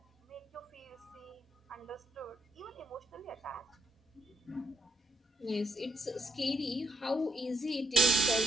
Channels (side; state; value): both; normal; correlation 0.72